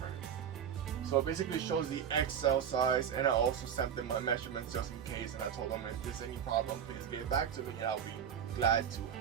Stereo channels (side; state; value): left; quieter; 8.4 dB